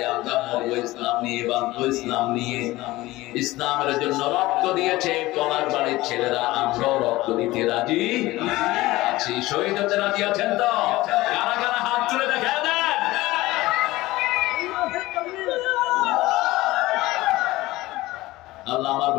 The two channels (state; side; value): quieter; right; 18.6 dB